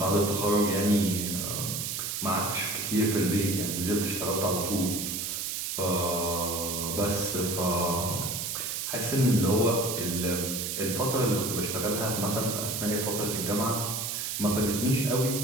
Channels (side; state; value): right; noise; hiss, 3 dB below the sound